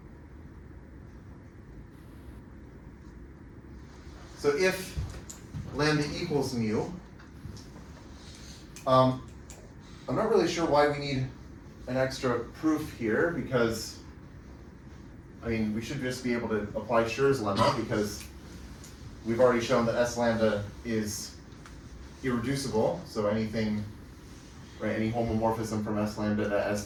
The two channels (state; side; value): identical; both; correlation 1.00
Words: So if lambda equals mu, I'm not really sure why we need an extra proof here, because I mean we should just be able to apply Schur's lemma, because we've already shown that S lambda is irreducible. So anything, right, any homomorphism from S lambda to